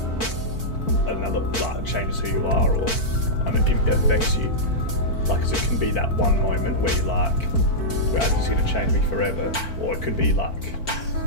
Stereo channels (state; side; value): late; right; 4.5 ms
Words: changes who you are, or it affects you. Like, 'cause it can be that one moment where you're like, well, this is going to change me forever, or it could be like